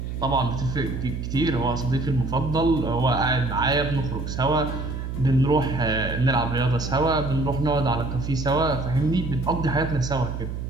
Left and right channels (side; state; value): right; noise; hum, 5 dB below the sound